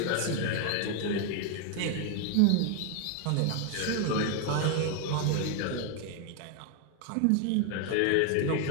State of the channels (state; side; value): different; both; correlation 0.01